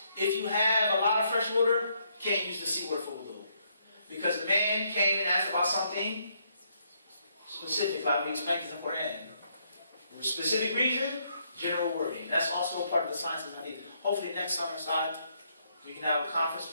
if you have a lot of fresh water, you can't use the seawater for wudu. Because the man came and asked about something specific, like we explained in the Quran. For a specific reason, general wording. That's also a part of the science of hadith. Hopefully next summer side, we can have a conference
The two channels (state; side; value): inverted; both; correlation -0.73